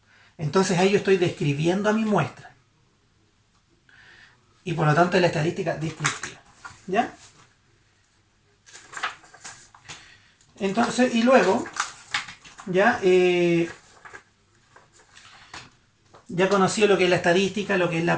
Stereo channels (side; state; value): both; identical; correlation 1.00